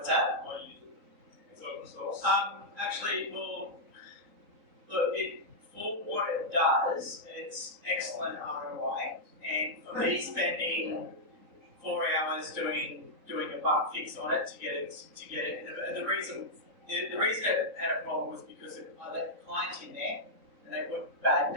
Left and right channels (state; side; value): late; left; 3.9 ms